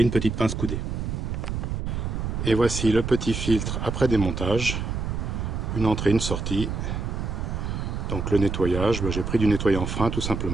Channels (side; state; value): right; noise; rumble, 3 dB below the sound